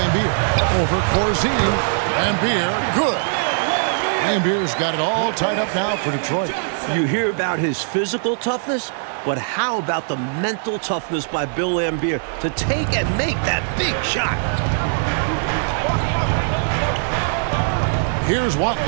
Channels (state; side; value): silent; left; 63 dB below the other